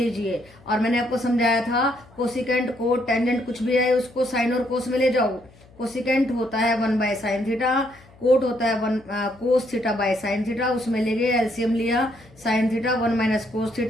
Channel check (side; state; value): left; noise; hum, 26 dB below the sound